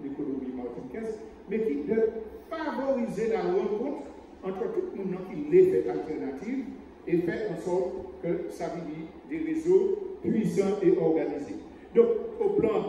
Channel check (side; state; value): both; identical; correlation 1.00